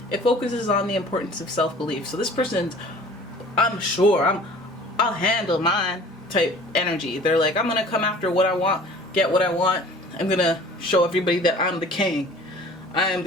It focuses on the importance of self-belief. So this person's, I'll handle mine type energy. They're like, I'm gonna come after what I want, get what I want. I'm gonna show everybody that I'm the king. I am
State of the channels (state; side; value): normal; both; correlation 0.47